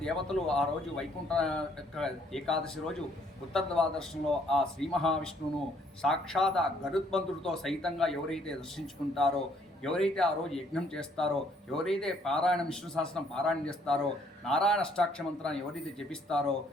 దేవతలు ఆ రోజు వైకుంఠ ఏకాదశి రోజు ఉత్తర ద్వాదశంలో ఆ శ్రీ మహావిష్ణువును సాక్షాత్ గరుత్మంతుడితో సహితంగా ఎవరైతే దర్శించుకుంటారో, ఎవరైతే ఆ రోజు యజ్ఞం చేస్తారో, ఎవరైతే పారాయణం విష్ణు సహస్రం పారాయణం చేస్తారో, నారాయణ అష్టాక్షర మంత్రాన్ని ఎవరైతే జపిస్తారో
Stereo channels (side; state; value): both; normal; correlation 0.65